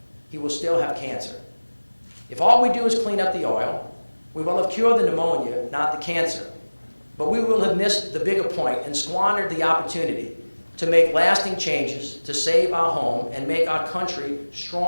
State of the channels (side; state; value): both; inverted; correlation -1.00